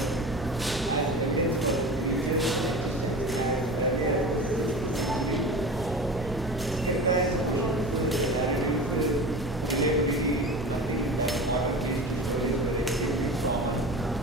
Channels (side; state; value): both; normal; correlation 0.32